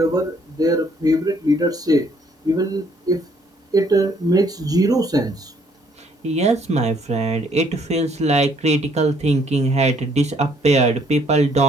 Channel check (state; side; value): normal; both; correlation 0.65